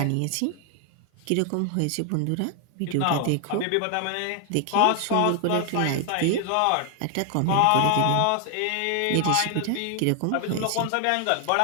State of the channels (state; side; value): different; both; correlation 0.00